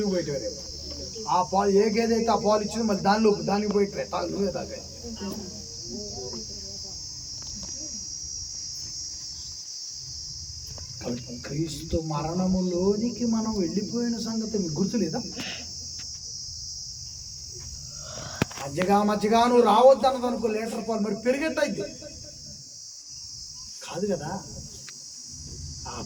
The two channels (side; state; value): both; identical; correlation 1.00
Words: పోయేటివారు. ఆ పాలు ఏ గేదె అయితే ఆ పాలు ఇచ్చింది, మళ్ళీ దానికి పోయి నువ్వే తాగా. క్రీస్తు మరణములోనికి మనం వెళ్ళిపోయిన సంగతి మీకు గుర్తులేదా? మజ్జిగా నువ్వు రావద్దు అన్నది అనుకో, లీటర్ పాలు మరి పెరిగెట్టయిద్ది కాదు కదా.